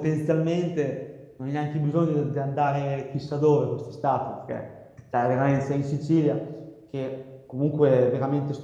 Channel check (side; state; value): both; identical; correlation 1.00